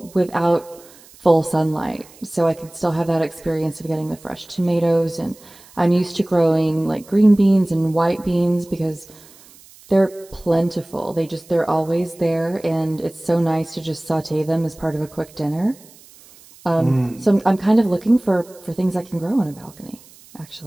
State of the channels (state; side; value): noise; right; hiss, 24 dB below the sound